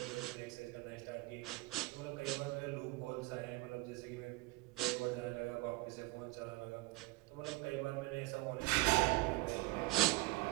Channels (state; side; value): quieter; left; 20.9 dB